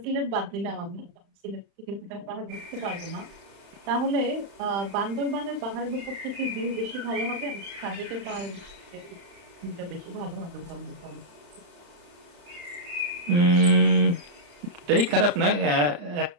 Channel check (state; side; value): late; left; 35 ms